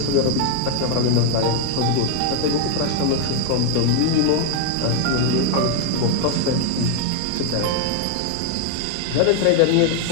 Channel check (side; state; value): both; different; correlation 0.00